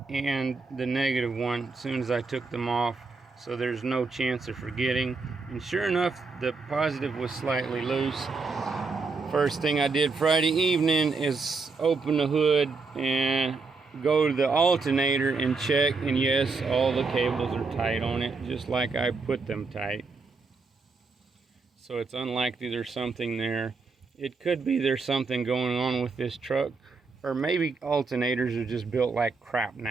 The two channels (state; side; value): quieter; left; 4.3 dB